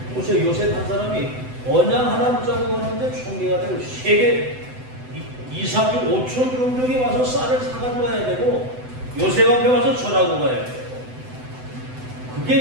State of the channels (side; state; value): left; late; 7.9 ms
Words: 보세요. 요셉 한 사람이 언양 하나 붙잡고 갔는데 총리가 되고 세계 2, 3주 5천 종족이 와서 쌀을 사가지고 가야 되고 요셉 앞에 와서 전하고 가야 돼요.